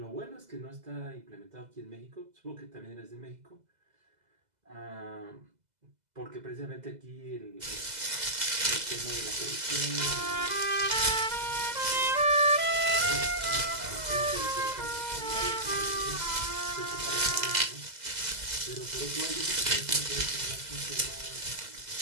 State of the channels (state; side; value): late; left; 2.0 ms